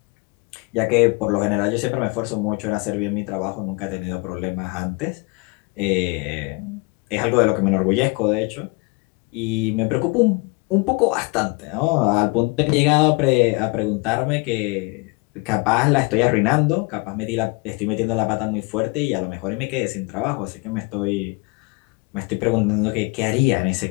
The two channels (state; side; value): quieter; right; 28.4 dB